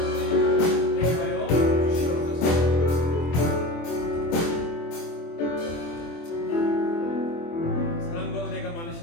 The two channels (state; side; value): late; right; 24 ms